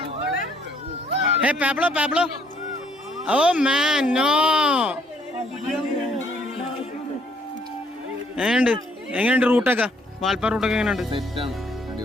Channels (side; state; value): both; normal; correlation 0.66